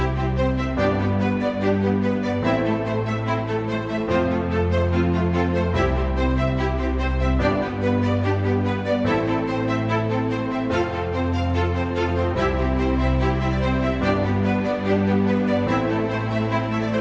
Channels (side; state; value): both; identical; correlation 1.00